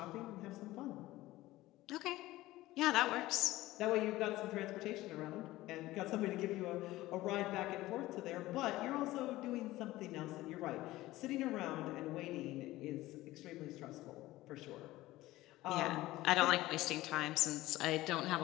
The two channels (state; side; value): quieter; right; 17.3 dB